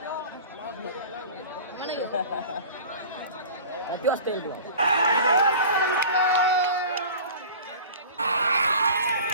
किती वाजता येईल तुला?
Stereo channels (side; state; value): both; inverted; correlation -0.40